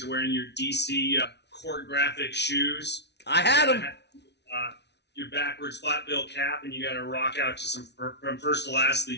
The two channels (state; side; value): late; right; 0.50 ms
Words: of wearing your DC court graphic shoes. I had them. Your backwards flat bill cap, and you got to rock out to some From First to Last, The